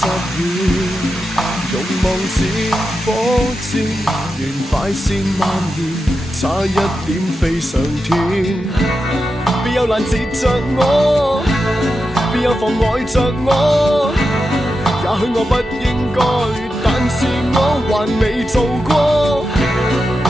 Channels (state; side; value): normal; both; correlation 0.89